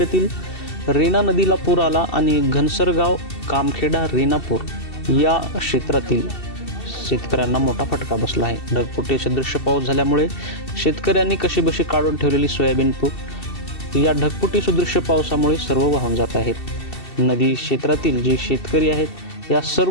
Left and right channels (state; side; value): late; right; 2.7 ms